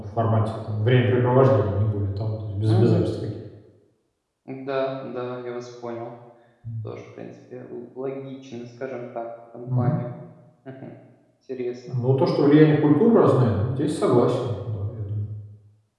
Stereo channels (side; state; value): both; identical; correlation 1.00